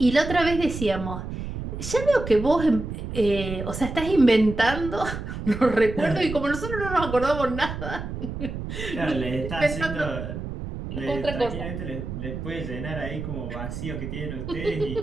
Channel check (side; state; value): right; noise; rumble, 7 dB below the sound